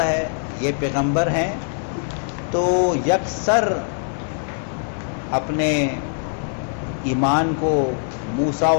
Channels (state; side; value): silent; right; 56 dB below the other